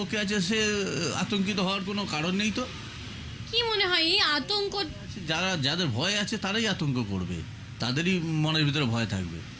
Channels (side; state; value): both; identical; correlation 1.00